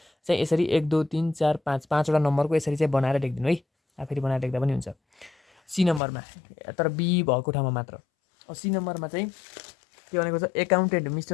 चाहिँ यसरी 1 2 3 4 5 5वटा नम्बरको यसरी चाहिँ बनाएर लेखिदिनु है, आफैले बनाएर लेख्दा पनि हुन्छ। सी नम्बरमा तर बी भएको ठाउँमा मात्र। अब सी नम्बरमा चाहिँ के भनेको छ, accountant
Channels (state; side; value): drops out; right; at 6.0 s